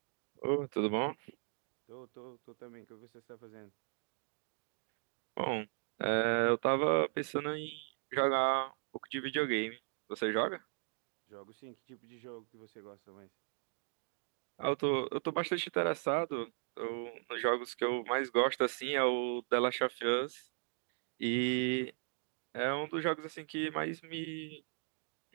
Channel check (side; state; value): left; silent; 53 dB below the other